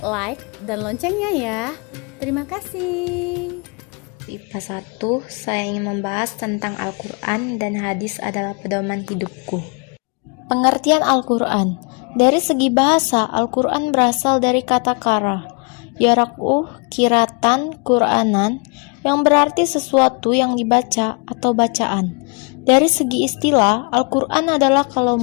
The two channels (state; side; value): quieter; right; 34.0 dB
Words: dan loncengnya ya. Terima kasih. IPA 1, saya ingin membahas tentang Al-Quran dan hadis adalah pedoman hidupku. Pengertian Al-Quran. Dari segi bahasa, Al-Quran berasal dari kata kara, kiratan, Quranan, yang berarti sesuatu yang dibaca atau bacaan. Dari segi istilah, Al-Quran adalah